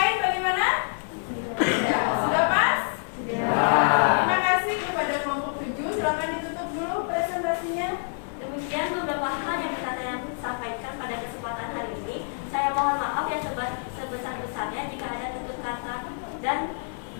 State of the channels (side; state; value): right; silent; digital silence